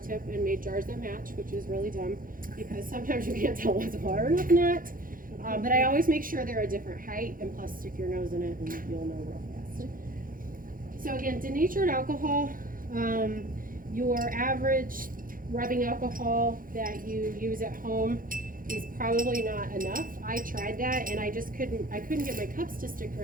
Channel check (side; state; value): left; late; 0.40 ms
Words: and made jars that match, which is really dumb because sometimes you can't tell what's water and what's not. But I always make sure they're a different height, and plus stick your nose in it and you'll know real fast. So again, denatured alcohol, your average rubbing alcohol that you use at home is probably not enough. I tried that and I couldn't get my cups to stick